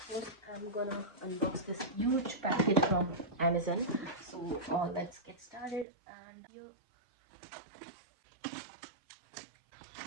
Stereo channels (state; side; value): drops out; left; at 5.9 s